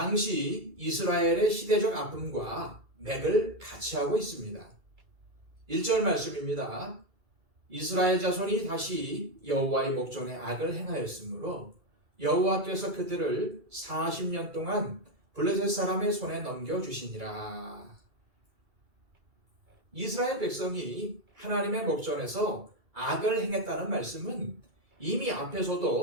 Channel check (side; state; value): left; late; 2.3 ms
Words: 이스라엘의 시대적 아픔과 맥을 같이 하고 있습니다. 1절 말씀입니다. 이스라엘 자손이 다시 여호와의 목전에 악을 행하였으므로 여호와께서 그들을 40년 동안 블레셋 사람의 손에 넘겨주시니라. 이스라엘 백성이 하나님의 목전에서 악을 행했다는 말씀은 이미